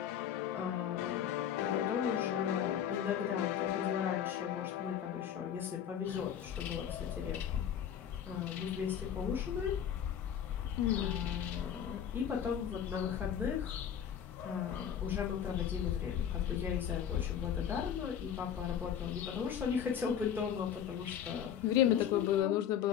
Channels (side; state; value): right; quieter; 9.0 dB